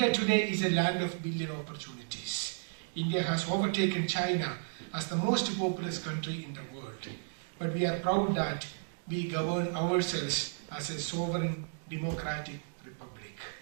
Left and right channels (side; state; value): left; silent; digital silence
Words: today is a land of billion opportunities. India has overtaken China as the most populous country in the world. But we are proud that we govern ourselves as a sovereign, democratic republic.